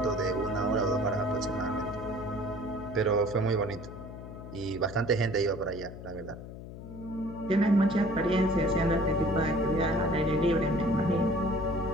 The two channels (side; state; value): left; noise; hum, 12 dB below the sound